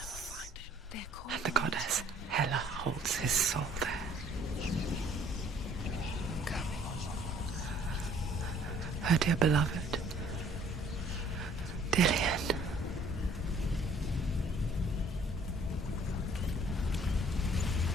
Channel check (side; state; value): both; normal; correlation 0.58